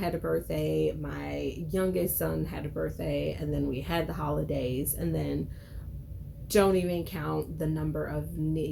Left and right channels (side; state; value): both; identical; correlation 1.00